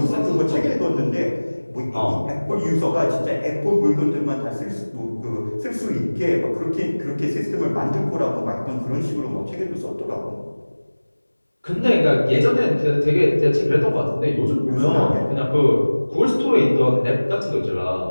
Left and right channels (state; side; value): inverted; both; correlation -1.00